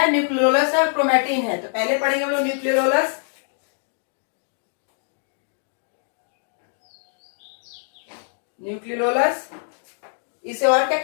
न्यूक्लियोलस और क्रोमैटिन है। तो पहले पढ़ेंगे हम लोग न्यूक्लियोलस, न्यूक्लियोलस इसे और क्या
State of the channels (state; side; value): silent; right; digital silence